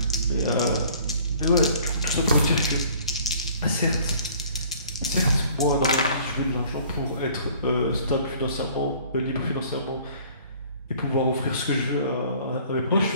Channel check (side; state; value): both; inverted; correlation -0.53